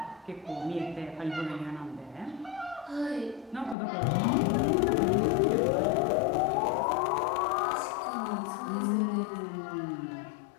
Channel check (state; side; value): drops out; right; at 3.8 s